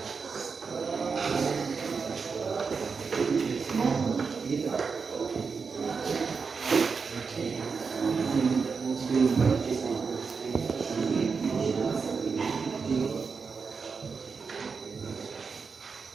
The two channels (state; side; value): quieter; left; 5.2 dB